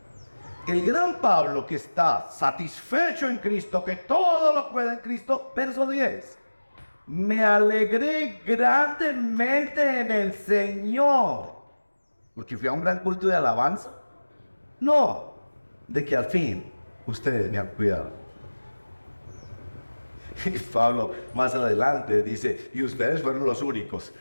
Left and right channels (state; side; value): inverted; both; correlation -1.00